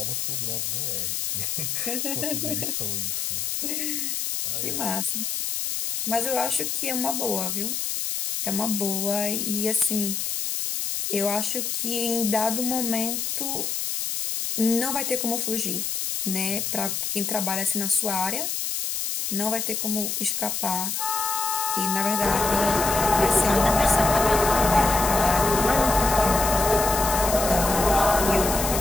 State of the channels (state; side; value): noise; left; hiss, 2 dB below the sound